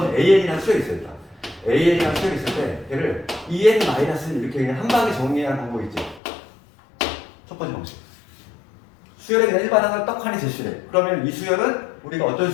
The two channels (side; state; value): right; drops out; at 6.2 s